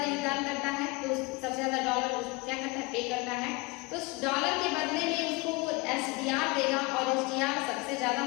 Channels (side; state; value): right; quieter; 25.1 dB